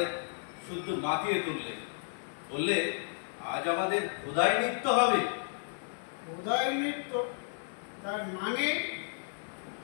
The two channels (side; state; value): right; silent; digital silence